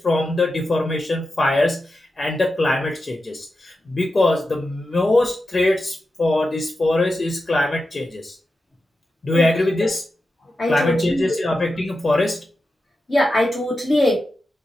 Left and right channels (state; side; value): normal; both; correlation 0.90